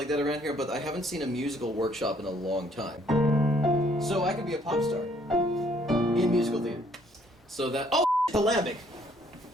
that around here, but I haven't seen a musical workshop in a long time. So I could be a pop star in musical theater. So that the lambic.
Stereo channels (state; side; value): normal; both; correlation 0.64